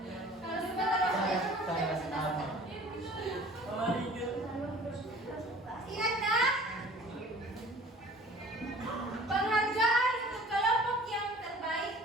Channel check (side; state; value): both; normal; correlation 0.48